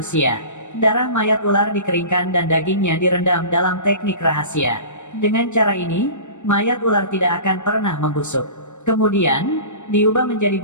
Darah mayat ular dikeringkan dan dagingnya direndam dalam teknik rahasia. Dengan cara ini, mayat ular tidak akan pernah membusuk. Kemudian, diubah menjadi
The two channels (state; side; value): late; right; 0.84 ms